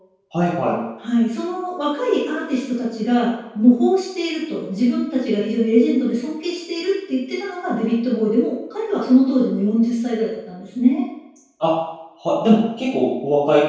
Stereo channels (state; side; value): identical; both; correlation 1.00